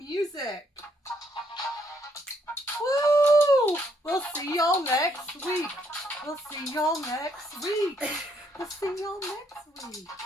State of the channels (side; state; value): both; normal; correlation 0.71